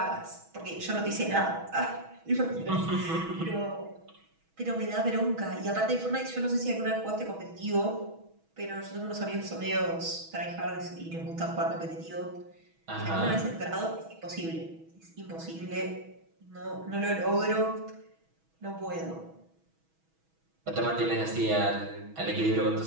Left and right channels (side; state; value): left; late; 6.2 ms